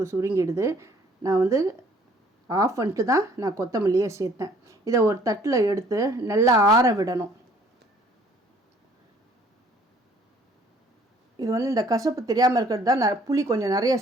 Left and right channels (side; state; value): both; normal; correlation 0.58